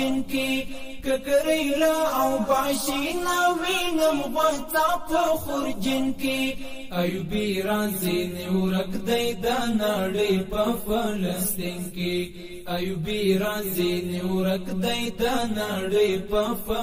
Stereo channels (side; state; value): both; identical; correlation 1.00